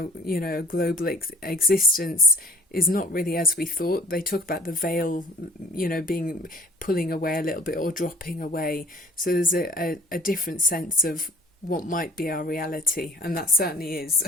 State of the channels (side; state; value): both; normal; correlation 0.53